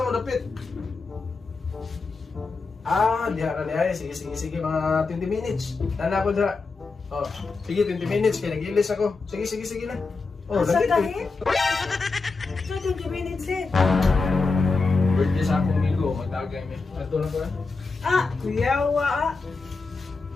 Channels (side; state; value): right; quieter; 4.1 dB